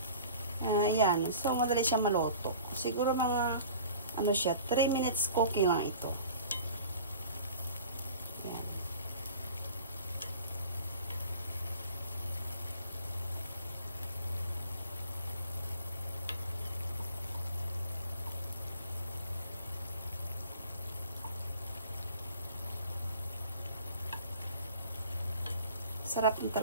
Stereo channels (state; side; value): inverted; both; correlation -0.45